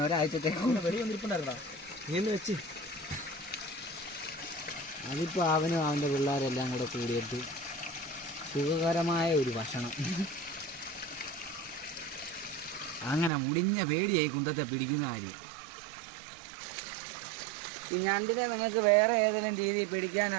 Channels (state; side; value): drops out; left; at 13.3 s